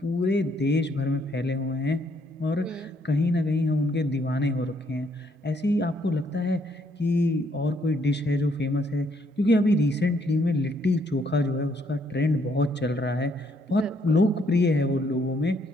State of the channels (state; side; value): normal; both; correlation 0.70